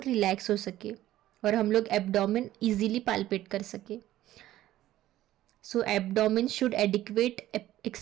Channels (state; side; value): quieter; left; 14.2 dB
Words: रिलैक्स हो सके और हम लोग एब्डोमिन इजीली पाल्पेट कर सके. So abdomen should adequate